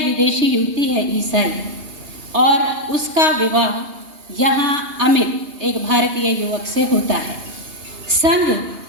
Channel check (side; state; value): left; late; 2.8 ms